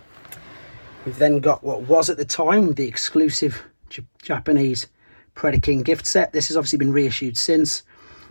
We've then got what was at the time the exclusive Japanese Predacon gift set. This has obviously been reissued since,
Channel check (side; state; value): both; inverted; correlation -1.00